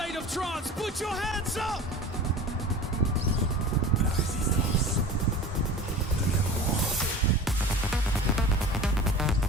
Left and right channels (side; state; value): both; normal; correlation 0.37